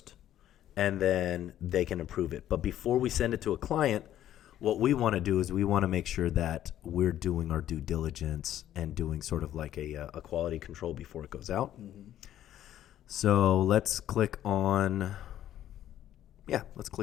and then they can approve it. But before we send it to a client, what we want to do is we want to make sure that we're doing our due diligence and doing sort of like a quality control before it goes out. Mm-hmm. So let's click on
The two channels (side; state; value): right; quieter; 12.0 dB